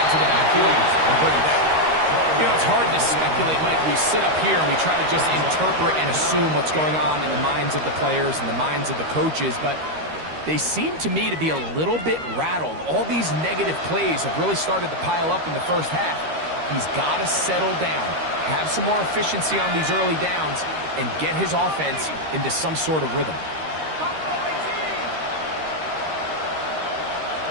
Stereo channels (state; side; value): late; left; 13 ms